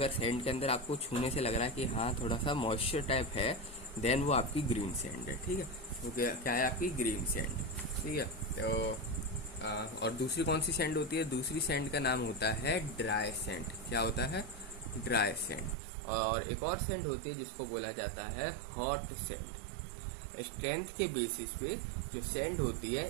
सैंड के अंदर आपको छूने से लग रहा है कि हाँ थोड़ा सा मॉइस्चर टाइप है, देन वो आपकी ग्रीन सैंड है, ठीक है। तो क्या है आपकी? ग्रीन सैंड, ठीक है। तो और दूसरी कौन सी सैंड होती है? दूसरी सैंड का नाम होता है ड्राई सैंड। क्या होता है? Dry sand. और एक और सैंड होती है जिसको बोला जाता है हॉट सैंड। स्ट्रेंथ के बेसिस पे जो सैंड होती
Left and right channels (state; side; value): drops out; left; at 15.8 s